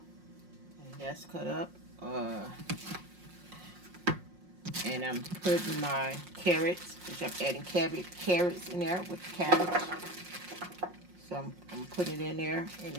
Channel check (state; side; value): late; left; 5.6 ms